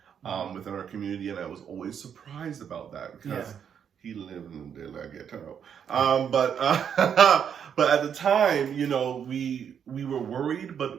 within our community, and I was always surprised about that because he lived in the ghetto. But at the time, you know, we were worried,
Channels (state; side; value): quieter; left; 8.0 dB